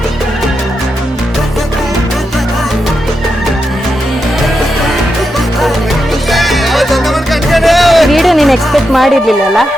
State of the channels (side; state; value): both; normal; correlation 0.86